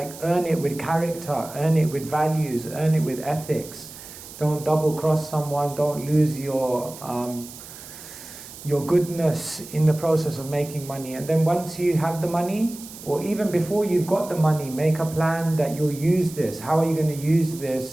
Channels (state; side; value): noise; right; hiss, 15 dB below the sound